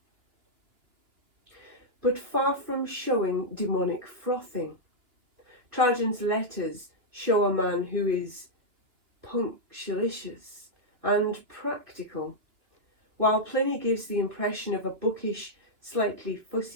But far from showing demonic frothing, Trajan's letters show a man who is punctilious and practical, while Pliny gives the impression of a bookish, slightly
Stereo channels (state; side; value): late; left; 2.6 ms